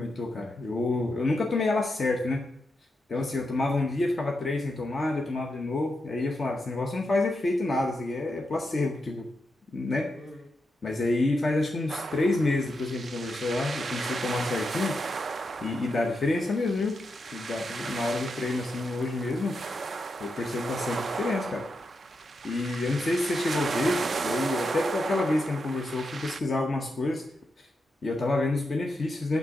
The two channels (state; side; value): normal; both; correlation 0.85